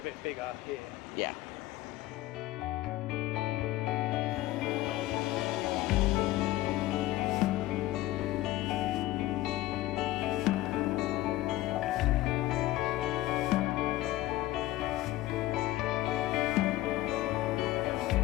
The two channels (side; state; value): right; quieter; 16.3 dB